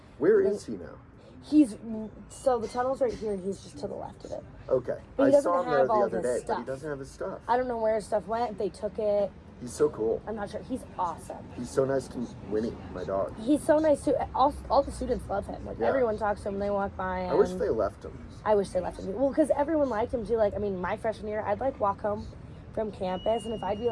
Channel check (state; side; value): identical; both; correlation 1.00